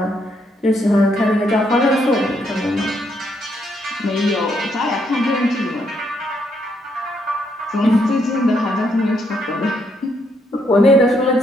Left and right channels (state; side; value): normal; both; correlation 0.75